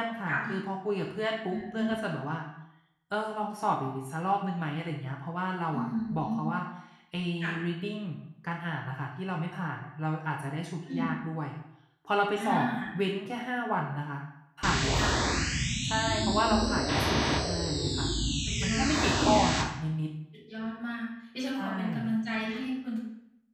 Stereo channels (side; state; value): both; identical; correlation 1.00